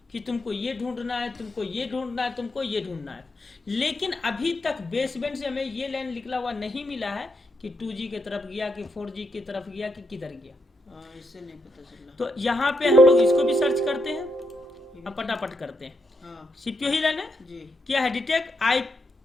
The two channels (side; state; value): both; normal; correlation 0.80